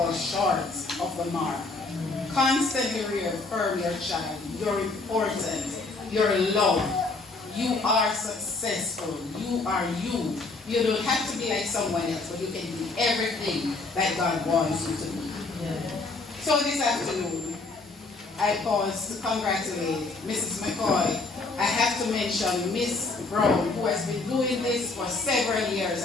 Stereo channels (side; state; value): right; quieter; 3.6 dB